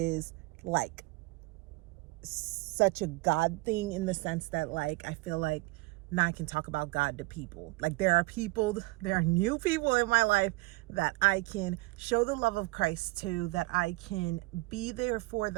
like such a God thing, in the sense that like I feel like now I can talk about God to people. Like there are new people in my life that I can show the love of Christ to, that I can be there for,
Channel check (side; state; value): left; quieter; 23.3 dB